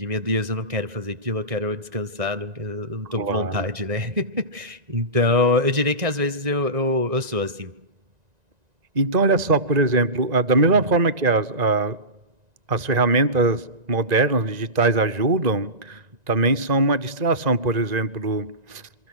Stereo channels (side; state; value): left; late; 1.9 ms